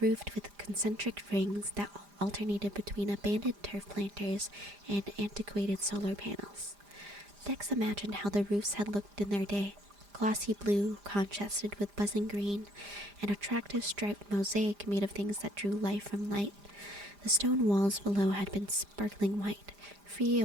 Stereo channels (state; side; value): late; left; 5.0 ms